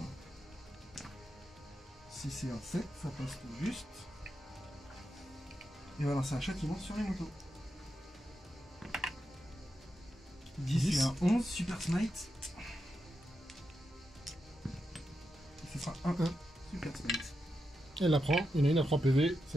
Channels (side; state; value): both; normal; correlation 0.87